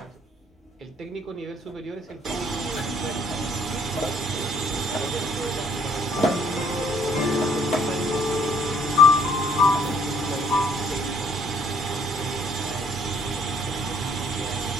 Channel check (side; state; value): both; normal; correlation 0.63